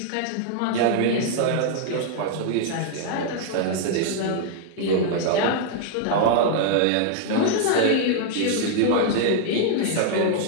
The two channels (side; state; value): both; different; correlation -0.01